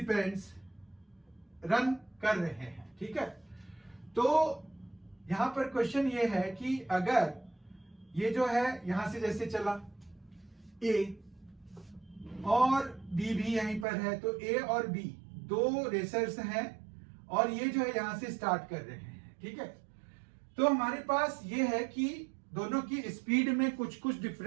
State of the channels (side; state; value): left; drops out; at 13.9 s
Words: रन कर रहे हैं, ठीक है। तो यहां पर क्वेश्चन ये है कि अगर ये जो है यहां से जैसे चला ए और बी भी यहीं पर है, तो ए और बी दो रेसर्स हैं और ये जो है यहां से स्टार्ट कर रहे हैं, ठीक है। तो हमारे पास ये है कि दोनों की स्पीड में कुछ कुछ